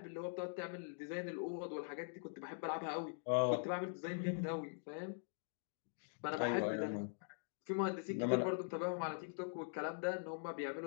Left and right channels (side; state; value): right; silent; digital silence